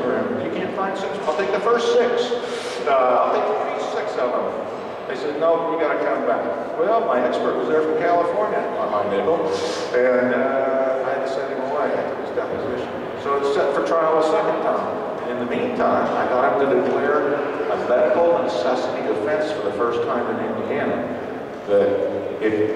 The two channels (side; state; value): both; identical; correlation 1.00